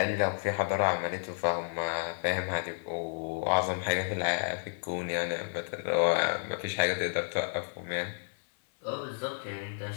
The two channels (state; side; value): silent; right; 57 dB below the other